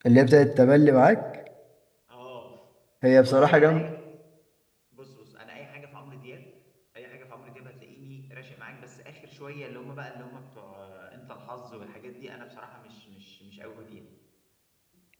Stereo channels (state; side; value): identical; both; correlation 1.00